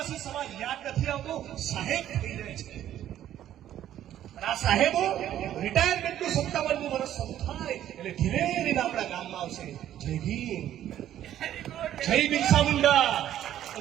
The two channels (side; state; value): left; quieter; 11.7 dB